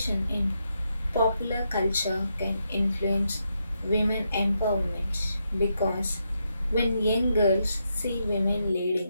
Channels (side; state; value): both; inverted; correlation -0.82